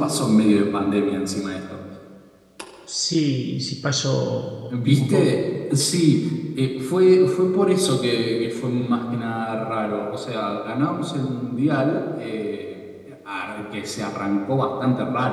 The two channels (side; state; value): both; identical; correlation 1.00